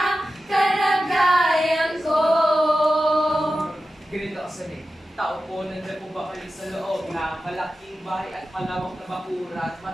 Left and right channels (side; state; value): both; normal; correlation 0.93